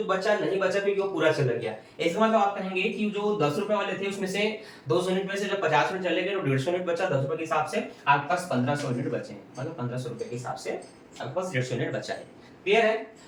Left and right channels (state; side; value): identical; both; correlation 1.00